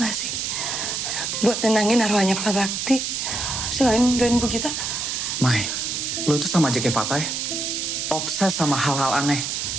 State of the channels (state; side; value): noise; right; hiss, 2 dB below the sound